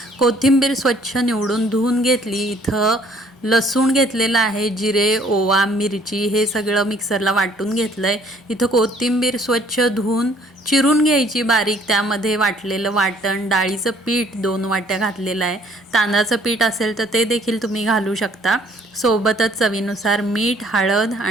कोथिंबीर स्वच्छ निवडून धुवून घेतली। इथं लसूण घेतलेला आहे, जिरे, ओवा, मिरची हे सगळं मिक्सरला वाटून घेतलंय। इथं कोथिंबीर स्वच्छ धुवून चिरून घ्यायची बारीक, त्यामध्ये वाटलेलं वाटण, डाळीचं पीठ 2 वाट्या घातलेलं आहे। तांदळाचं पीठ असेल तर ते देखील तुम्ही घालू शकता। सोबतच चवीनुसार मीठ, हळद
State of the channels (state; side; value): normal; both; correlation 0.60